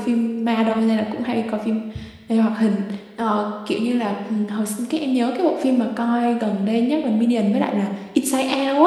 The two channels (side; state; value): both; identical; correlation 1.00